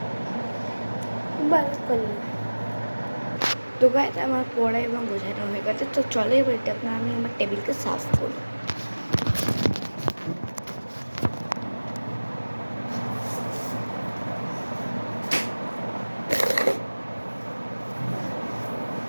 তো গাইস আমার পড়া এবং বোঝানো হয়ে গেছে। তো চলো এবার এটা আমি আমার টেবিলকে সাফ করি।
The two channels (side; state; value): both; inverted; correlation -1.00